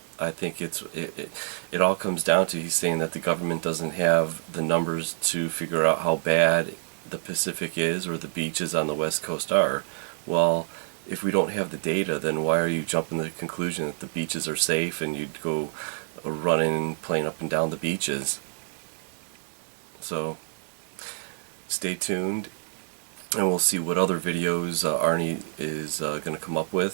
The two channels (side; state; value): left; silent; 60 dB below the other